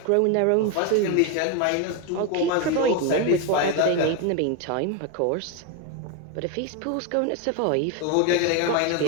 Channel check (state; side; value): different; both; correlation 0.01